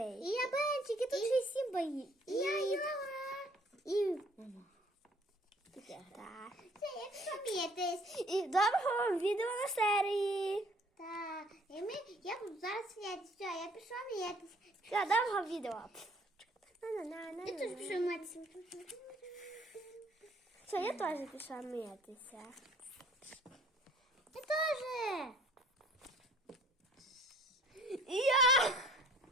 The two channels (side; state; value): both; normal; correlation 0.56